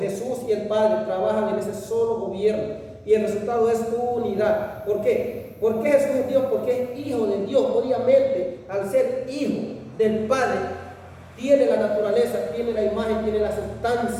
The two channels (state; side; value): identical; both; correlation 1.00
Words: y el Padre trabajan en ese solo gobierno. Y el resultado es unidad. ¿Por qué? ¿Por qué Jesús es Dios? Porque es hijo de Dios. Obviamente, al ser hijo del Padre, tiene la naturaleza, tiene la imagen, tiene la